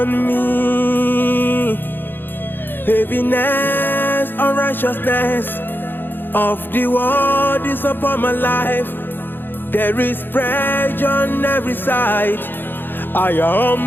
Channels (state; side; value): late; right; 0.097 ms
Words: me. Heaviness, unrighteousness of the world is upon my life. There is pressure on every side. I